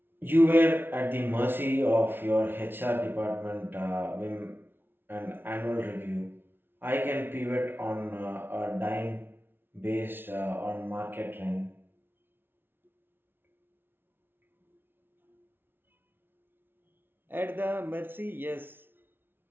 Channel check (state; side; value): late; left; 0.11 ms